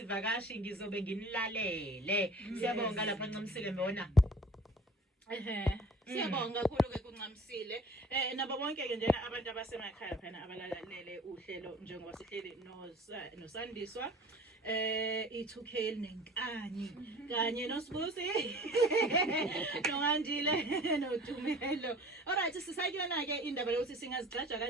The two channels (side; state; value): both; normal; correlation 0.46